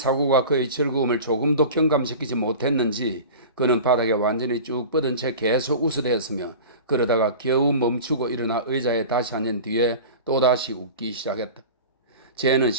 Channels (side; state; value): both; inverted; correlation -0.35